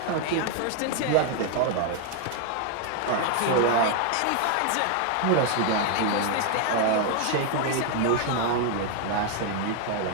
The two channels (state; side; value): different; both; correlation 0.00